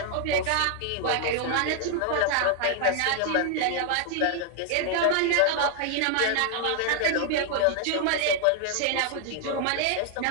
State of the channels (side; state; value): both; different; correlation 0.00